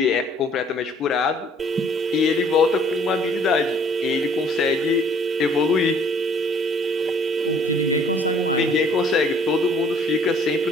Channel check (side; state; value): both; normal; correlation 0.59